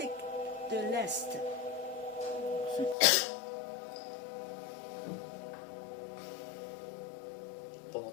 de l'Est. Pendant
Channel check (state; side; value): drops out; right; at 3.0 s